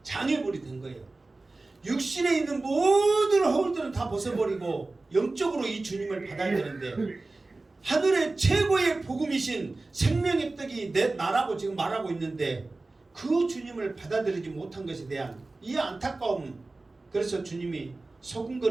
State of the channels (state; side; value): quieter; left; 3.3 dB